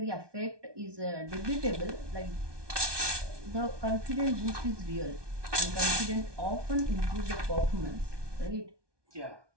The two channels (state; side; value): late; left; 1.2 ms